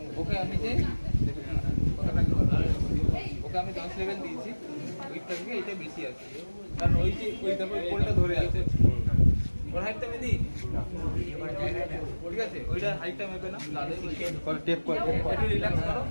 ওকে আমি যে ওকে আমি 10 লেভেল দিয়েছি, ওইটা থেকে এটা বেশি আছে, কারণ ওই যে ওই দেখো কোলটা ধরে আছে, ওর হাইটটা আমি দিই ঠিক আছে, ওইটা হাইটটা মেপে না করে টেপ করে একটু রিল্যাক্স করো,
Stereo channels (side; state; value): both; inverted; correlation -1.00